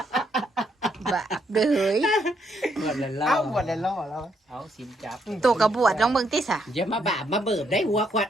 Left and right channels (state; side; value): normal; both; correlation 0.75